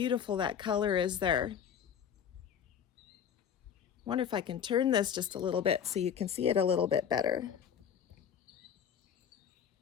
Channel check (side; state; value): right; quieter; 8.3 dB